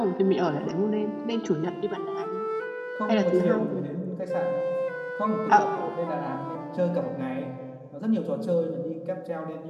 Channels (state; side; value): identical; both; correlation 1.00